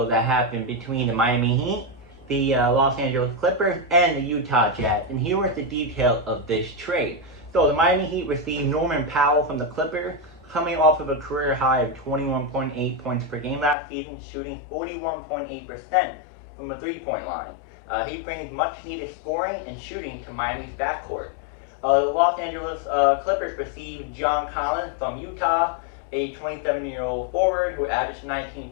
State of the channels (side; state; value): right; drops out; at 13.8 s